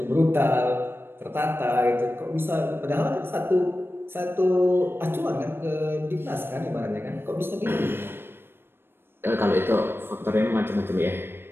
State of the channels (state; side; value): late; left; 0.11 ms